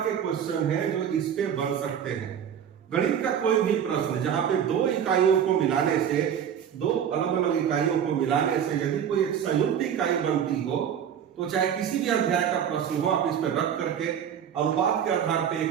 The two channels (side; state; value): left; quieter; 8.7 dB